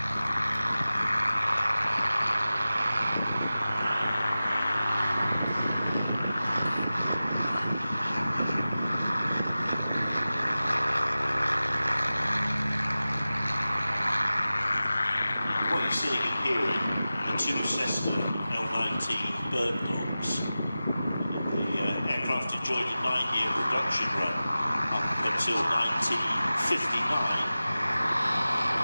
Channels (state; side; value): inverted; both; correlation -0.95